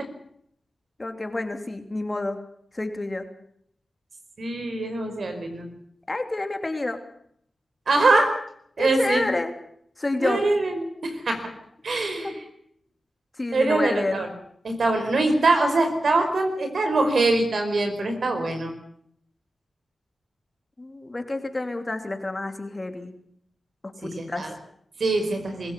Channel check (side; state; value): both; normal; correlation 0.91